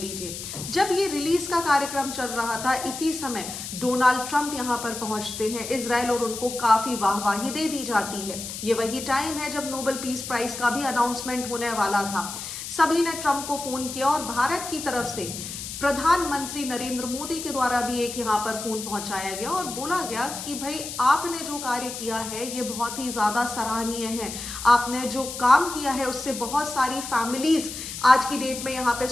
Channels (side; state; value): left; noise; hiss, 8 dB below the sound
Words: जब ये रिलीज का कार्यक्रम चल रहा था, इसी समय डोनाल्ड ट्रंप यहां पर पहुंचते हैं इजराइल और उनको काफी वाहवाही दे दी जाती है। ये वही टाइम है जब नोबेल पीस प्राइज का भी अनाउंसमेंट होने वाला था। सभी ने ट्रंप को फोन किया और भारत की तरफ से प्रधानमंत्री नरेंद्र मोदी के द्वारा भी एक यहाँ पर फोन पहुंचाया गया और बोला गया कि भाई आपने जो कार्य किया है ये बहुत ही ज्यादा सराहनीय है। आपने जो काम किया है उससे बहुत सारी फैमिलीज आज की डेट में यहाँ पे